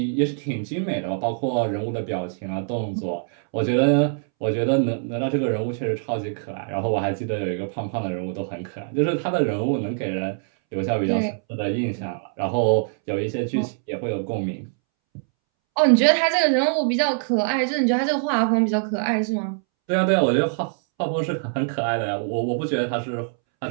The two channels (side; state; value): left; silent; 63 dB below the other